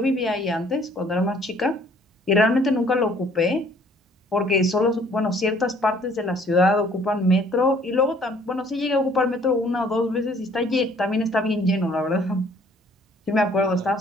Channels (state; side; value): normal; both; correlation 0.59